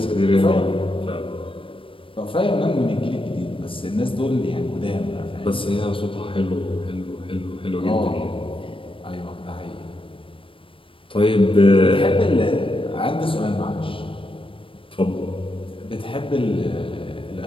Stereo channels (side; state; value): right; late; 0.25 ms